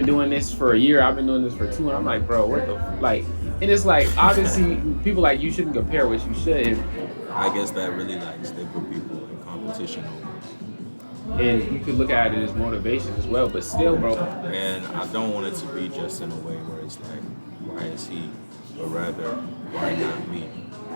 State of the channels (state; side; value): inverted; both; correlation -1.00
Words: doing this for a year. I've been doing this for 2, and I'm like, bro, what the like? And it's like obviously people like you shouldn't compare what you should. And I guess that really like they put people in competition almost. And you could look at it as motivation as well, but still, bro. And I don't want it to be just in a way where it's like, why is he, but rather, why not me?